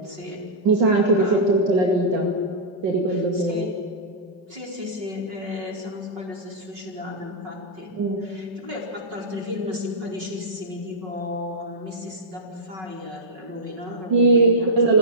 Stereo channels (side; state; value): left; late; 5.4 ms